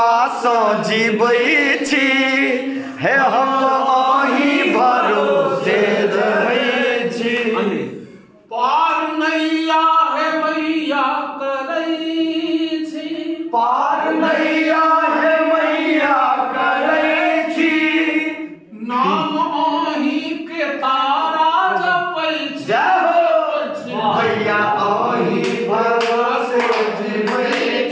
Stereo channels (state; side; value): identical; both; correlation 1.00